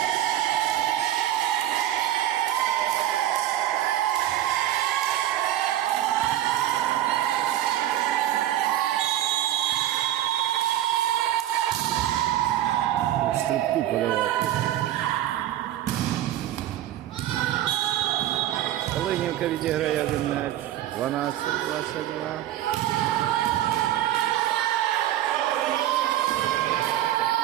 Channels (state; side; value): quieter; left; 13.0 dB